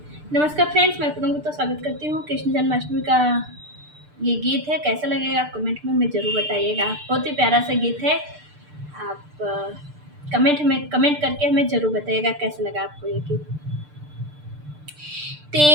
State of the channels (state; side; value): late; left; 6.7 ms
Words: नमस्कार फ्रेंड्स, मैं पूनम गुप्ता स्वागत करती हूँ। कृष्ण जन्माष्टमी का ये गीत है, कैसा लगेगा आप कमेंट में हमें ज़रूर बताइएगा। बहुत ही प्यारा सा गीत है। आप कमेंट करके हमें ज़रूर बताइएगा कैसा लगा आपको ये गीत।